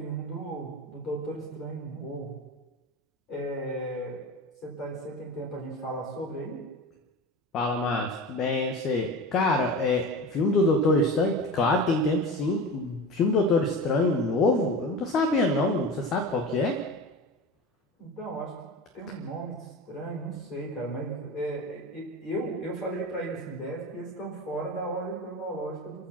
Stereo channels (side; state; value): both; normal; correlation 0.30